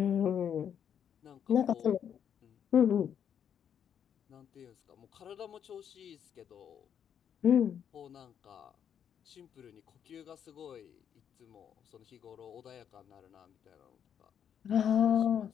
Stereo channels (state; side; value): quieter; right; 8.6 dB